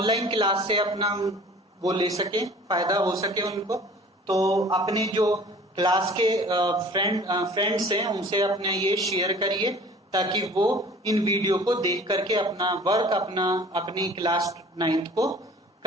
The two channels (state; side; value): normal; both; correlation 0.47